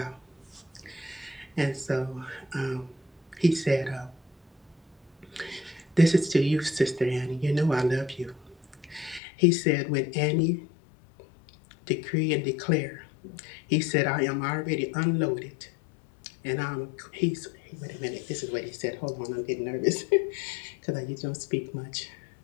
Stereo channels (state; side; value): drops out; right; at 9.2 s